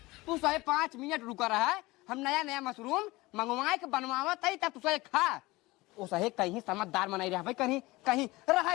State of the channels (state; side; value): quieter; right; 20.9 dB